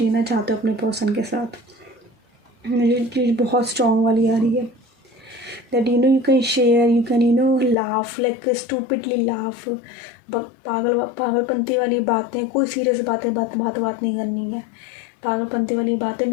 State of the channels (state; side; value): drops out; right; at 7.8 s